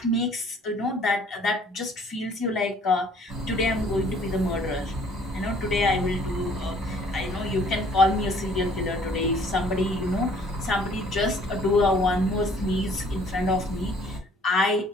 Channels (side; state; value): both; normal; correlation 0.58